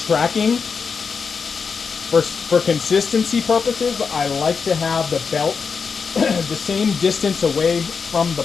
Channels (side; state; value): right; quieter; 5.6 dB